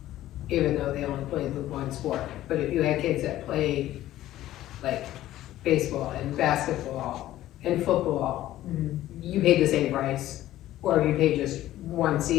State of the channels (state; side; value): quieter; right; 14.2 dB